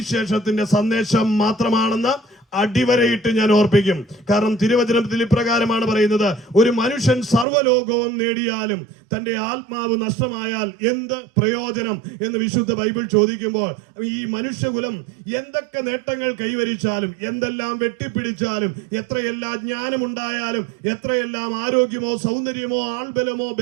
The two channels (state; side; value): drops out; left; at 7.5 s